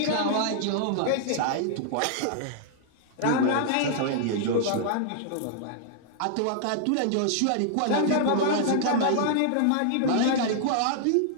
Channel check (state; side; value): different; both; correlation -0.01